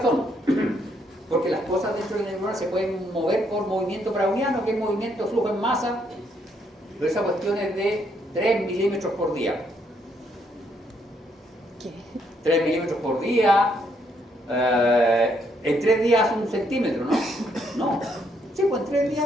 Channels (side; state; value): both; normal; correlation 0.73